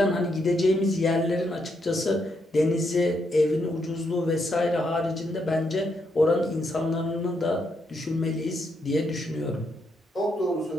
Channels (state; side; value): normal; both; correlation 0.78